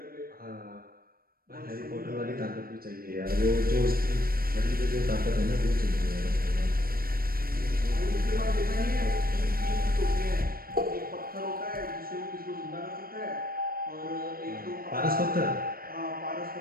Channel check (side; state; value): left; late; 0.43 ms